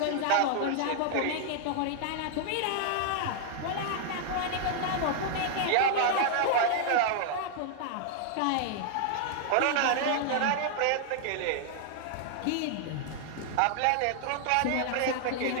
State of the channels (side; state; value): both; different; correlation -0.01